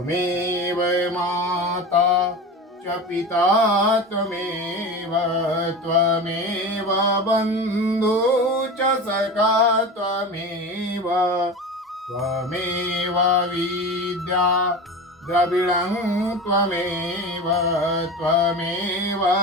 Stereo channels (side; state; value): both; normal; correlation 0.29